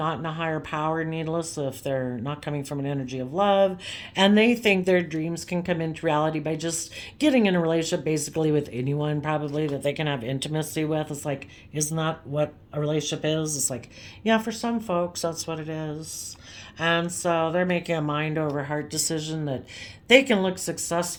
in a higher power, needless if they're not coming from an energy of love. And they think their dreams can come into reality by just getting in a relationship basically with anyone, probably that they can have intimacy with. It's like, isn't that what a relationship is? It's like, yeah, for some folks, that's what it is. And so they're making a mind over heart decision that they can look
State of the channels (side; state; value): both; identical; correlation 1.00